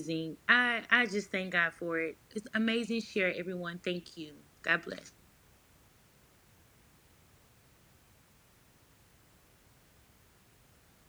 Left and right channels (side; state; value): both; identical; correlation 1.00